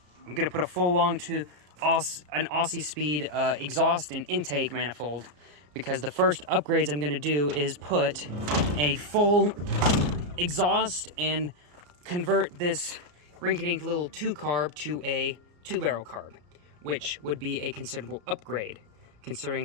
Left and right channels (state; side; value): late; left; 34 ms